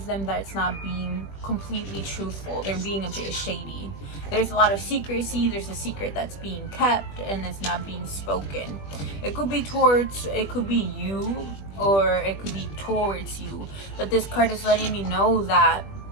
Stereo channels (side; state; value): right; late; 20 ms